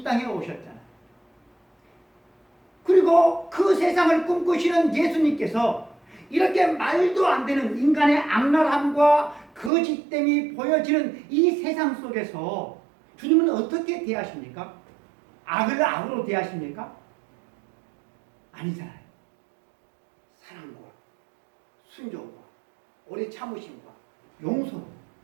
땅에 오셨잖아요. 그리고 그 세상을 꿈꾸시는 예수님께서 이렇게 말도 안 되는 인간의 악랄함과 거짓됨이 보여지는 이 세상 속에서 주님은 어떻게 대하십니까? 악을 악으로 대하십니까? 아니잖아요. 사랑과 순종과 오래 참으심과 용서로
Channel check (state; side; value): drops out; left; at 9.7 s